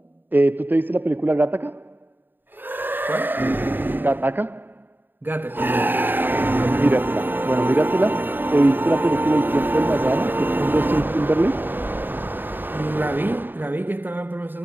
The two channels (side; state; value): left; late; 0.093 ms